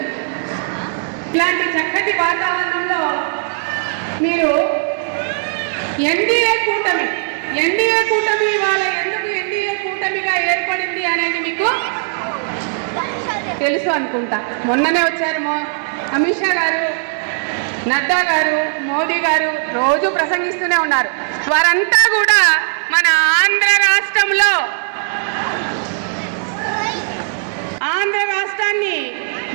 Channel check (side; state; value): left; silent; digital silence